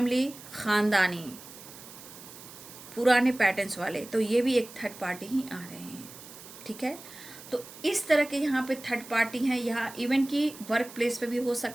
ख़ानदानी, पुराने पैटर्न्स वाले, तो ये भी एक थर्ड पार्टी ही आ रहे हैं, ठीक है। तो इस तरह के यहाँ पे थर्ड पार्टी हैं। यहाँ इवन कि वर्क प्लेस पे भी हो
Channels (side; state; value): right; noise; hiss, 17 dB below the sound